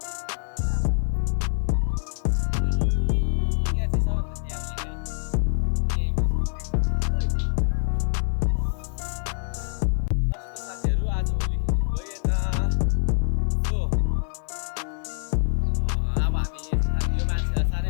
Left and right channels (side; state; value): right; silent; 57 dB below the other